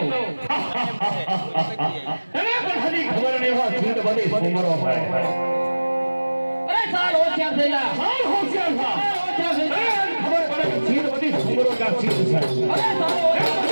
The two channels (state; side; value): inverted; both; correlation -1.00